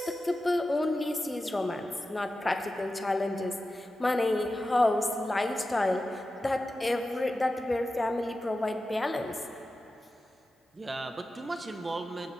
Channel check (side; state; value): both; normal; correlation 0.93